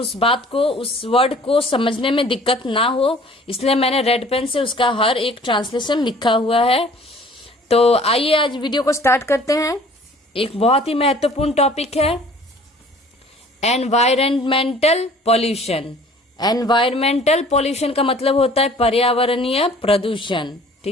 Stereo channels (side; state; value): both; normal; correlation 0.51